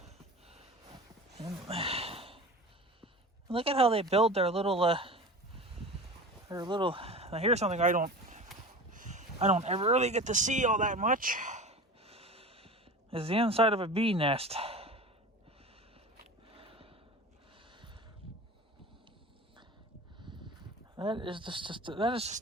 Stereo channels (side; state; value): both; normal; correlation 0.35